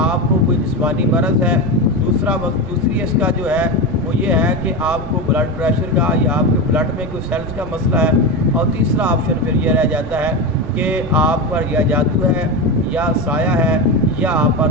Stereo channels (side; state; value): right; noise; rumble, 12 dB below the sound